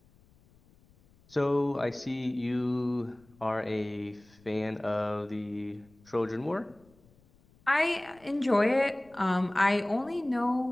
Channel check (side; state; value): left; noise; rumble, 30 dB below the sound